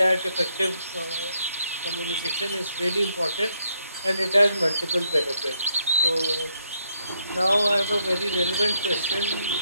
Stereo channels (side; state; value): both; inverted; correlation -0.76